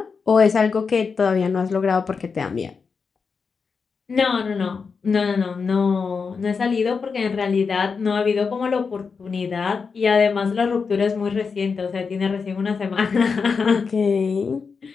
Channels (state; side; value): quieter; right; 5.3 dB